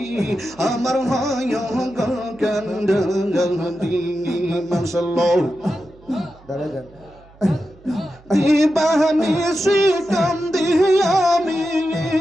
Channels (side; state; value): right; noise; hum, 26 dB below the sound